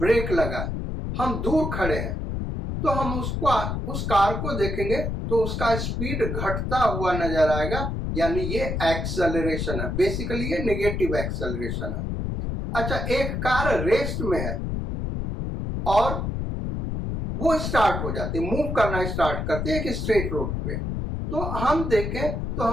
लगा, हम दूर खड़े हैं, तो हम उस कार को देखेंगे तो उसका स्पीड घटता हुआ नजर आएगा, यानी ये एक्सेलरेशन है। बेसिकली ये नेगेटिव एक्सेलरेशन है। अच्छा, एक कार रेस्ट में है और वो स्टार्ट हो जाती है, मूव करना स्टार्ट करते हैं एक स्ट्रेट रोड पे, तो हम देखें तो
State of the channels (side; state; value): left; noise; rumble, 3 dB below the sound